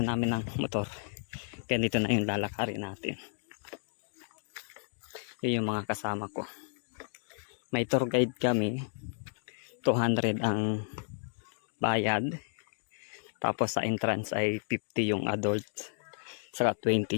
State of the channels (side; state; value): right; silent; digital silence